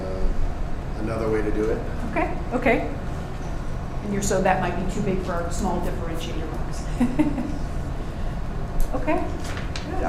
another way to do it. Okay. And so that might be too big for our small differentiator box. Okay, good,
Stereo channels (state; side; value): identical; both; correlation 1.00